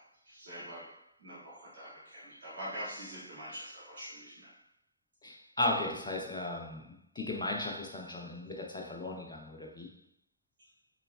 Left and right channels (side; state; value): both; inverted; correlation -0.40